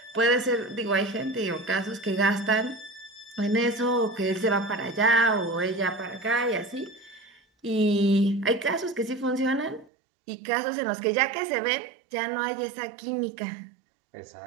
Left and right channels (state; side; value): drops out; left; at 9.9 s